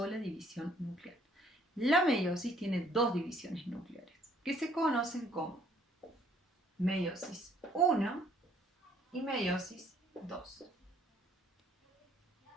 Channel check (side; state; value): both; normal; correlation 0.62